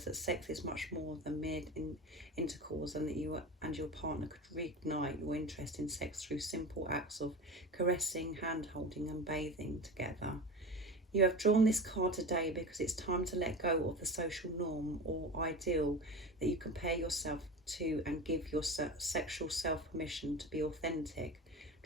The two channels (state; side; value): normal; both; correlation 0.30